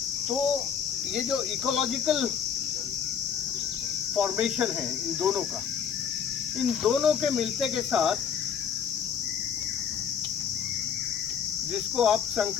तो ये जो इकोलॉजिकल फॉर्मेशन है इन दोनों का, इन दोनों के मिलते के साथ, जिसको आप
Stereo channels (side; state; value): right; quieter; 7.7 dB